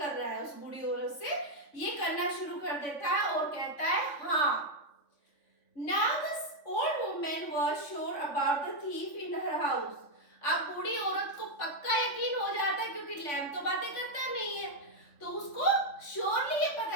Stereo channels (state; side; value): late; right; 3.5 ms